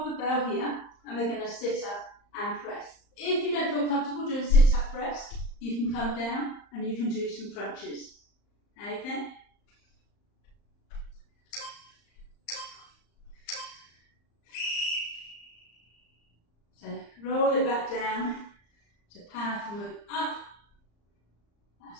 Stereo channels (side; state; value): right; late; 34 ms